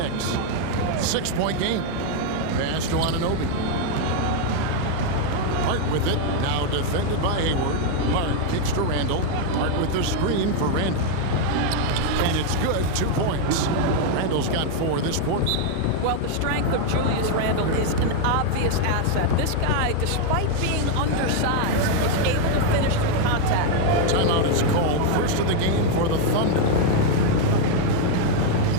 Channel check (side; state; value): both; different; correlation 0.01